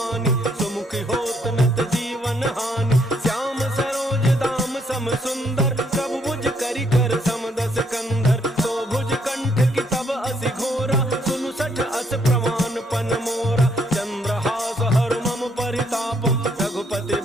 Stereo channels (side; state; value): both; normal; correlation 0.71